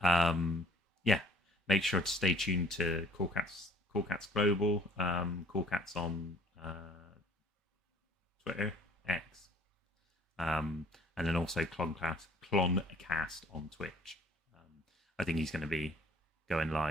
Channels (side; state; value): both; normal; correlation 0.56